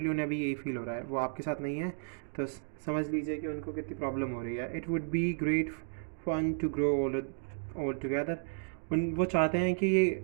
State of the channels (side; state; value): left; silent; digital silence